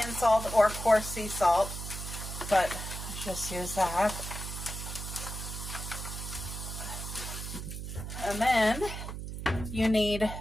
salt or coarse sea salt, but let's just use that. And then you need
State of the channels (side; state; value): right; noise; hum, 7 dB below the sound